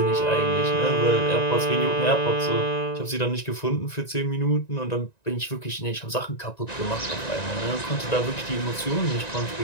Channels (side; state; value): right; late; 1.9 ms